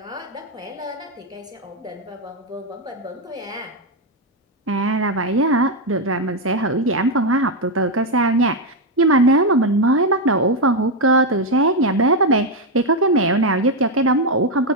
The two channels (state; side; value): normal; both; correlation 0.05